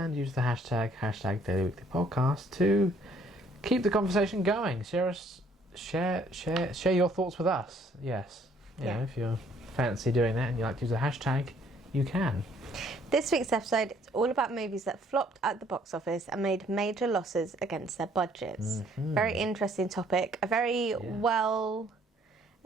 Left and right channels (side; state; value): both; normal; correlation 0.63